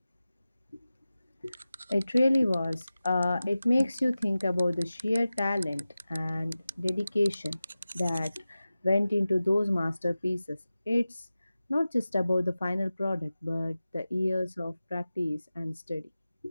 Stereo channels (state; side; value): inverted; both; correlation -0.95